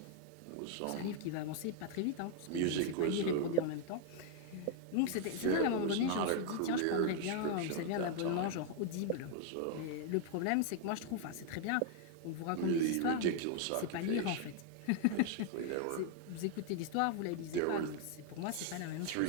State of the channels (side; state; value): both; different; correlation 0.00